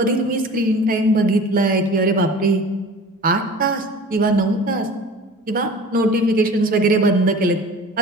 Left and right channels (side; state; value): both; normal; correlation 0.41